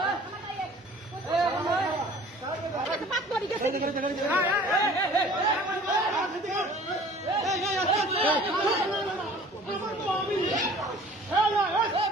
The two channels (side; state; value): both; normal; correlation 0.48